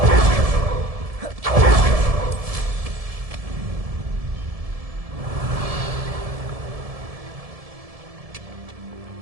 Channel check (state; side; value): late; left; 1.7 ms